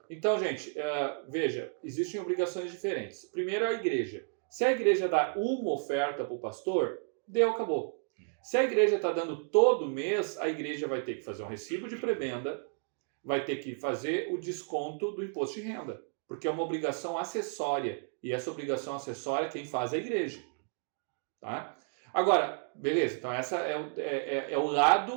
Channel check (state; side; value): silent; left; 56 dB below the other